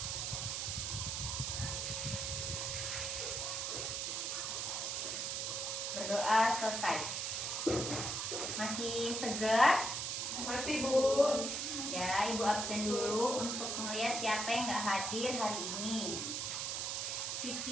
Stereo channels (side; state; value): right; noise; hiss, 1 dB below the sound